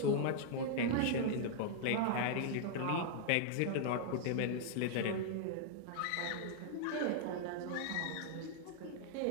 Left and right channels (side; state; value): both; different; correlation -0.01